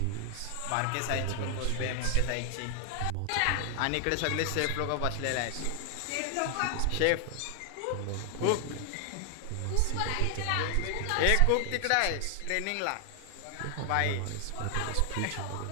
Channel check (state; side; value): different; both; correlation 0.00